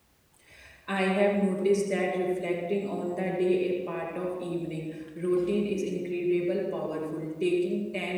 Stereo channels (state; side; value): identical; both; correlation 1.00